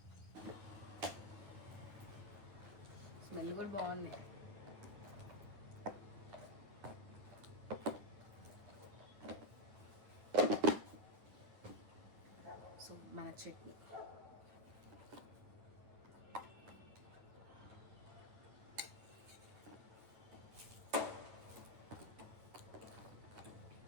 స్మెల్ కూడా బాగుంది. సో మన చట్నీ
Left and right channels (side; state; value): left; late; 10 ms